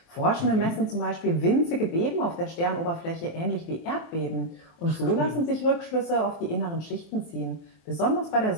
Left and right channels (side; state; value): right; late; 23 ms